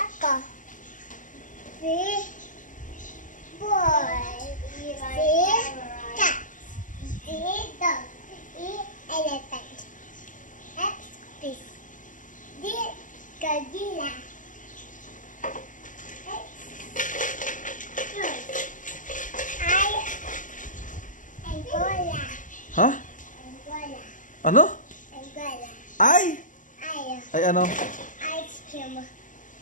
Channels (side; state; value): right; late; 0.38 ms